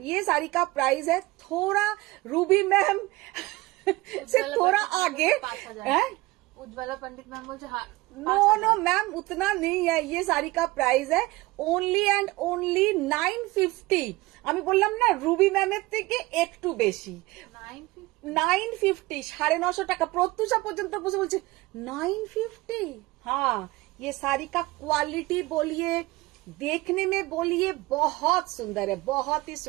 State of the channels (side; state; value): left; quieter; 20.7 dB